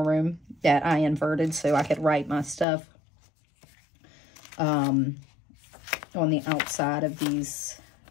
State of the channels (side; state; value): right; drops out; at 2.7 s